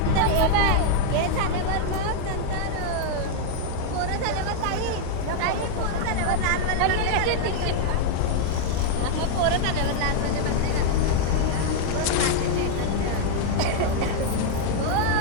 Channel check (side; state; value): both; different; correlation -0.01